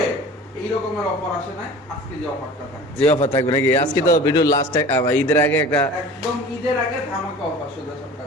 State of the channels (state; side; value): normal; both; correlation 0.41